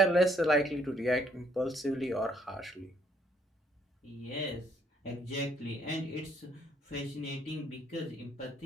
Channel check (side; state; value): both; normal; correlation 0.67